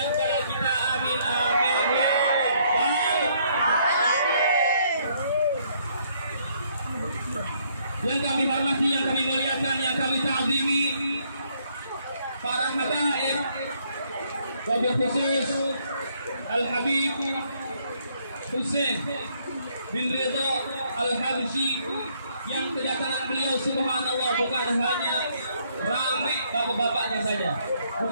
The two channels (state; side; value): inverted; both; correlation -0.69